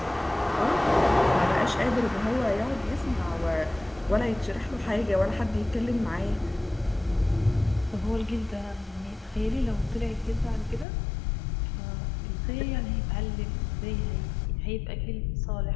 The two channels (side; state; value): right; drops out; at 10.9 s